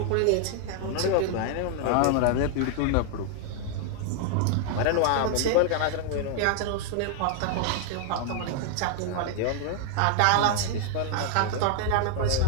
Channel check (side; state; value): both; different; correlation 0.00